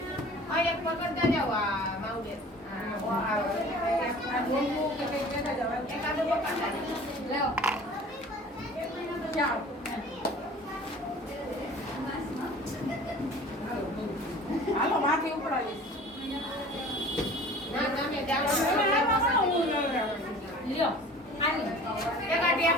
આ એક પકડતા જાવ આ માઉડે આ બોલવું કે કઈ કહેતા જાવ એકાદો પકડતા લેવો જાઓ હાલો માથે ઉપડાવી ના તમે જાઓ લ્યો આની એકા ટેપ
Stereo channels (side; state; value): both; normal; correlation 0.44